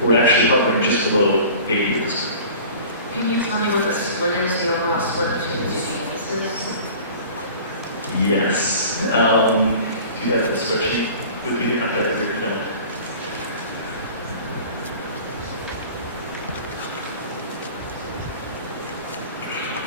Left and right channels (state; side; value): inverted; both; correlation -0.42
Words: We're actually hovering just below 80 at this point. Can you tell me what the split is, the overall split between the two campuses? Yes. Do you have the spreadsheet with you? I've got it here. No.